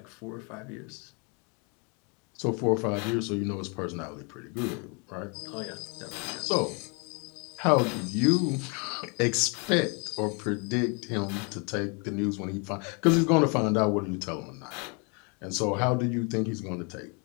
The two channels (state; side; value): quieter; right; 34.1 dB